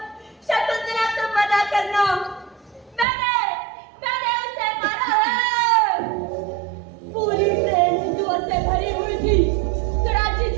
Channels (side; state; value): left; drops out; at 3.1 s